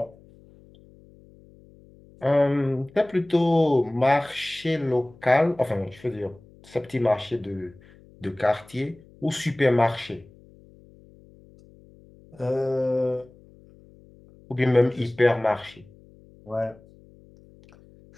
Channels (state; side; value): noise; left; hum, 25 dB below the sound